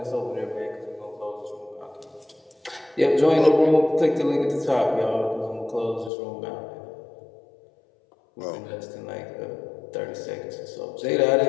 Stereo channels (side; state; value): right; drops out; at 6.1 s